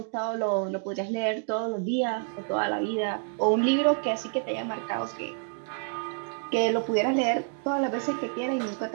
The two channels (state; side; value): silent; left; 56 dB below the other